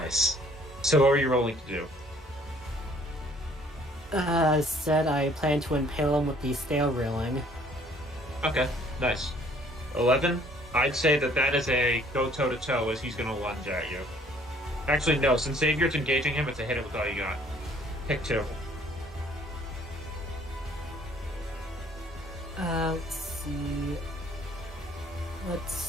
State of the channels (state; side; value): normal; both; correlation 0.58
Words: So what are you rolling to do? Said I plan to impale him with the stair railing. Okay, nice. 11? I'd say that is a go toe-to-toe as he's going to lunge at you. Actually, no, since Xavier's engaging him, it's a hit it with all you got. Pick 2. Let's see.